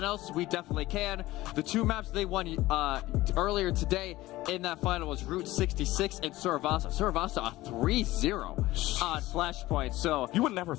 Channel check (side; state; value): right; quieter; 17.6 dB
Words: else, we definitely can. The 2 maps they won earlier today in that final was Route 66 and Suravasa. Suravasa a 3-0 on Flashpoint. So You would never